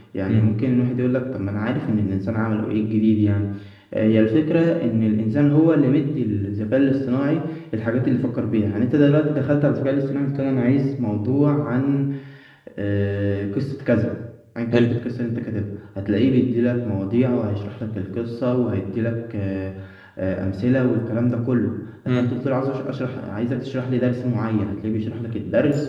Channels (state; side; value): identical; both; correlation 1.00